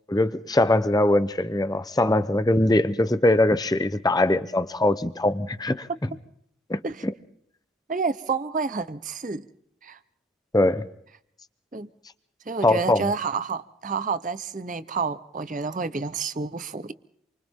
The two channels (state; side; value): normal; both; correlation 0.66